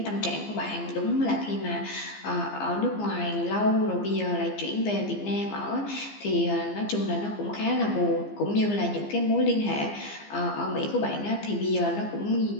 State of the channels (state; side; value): late; right; 15 ms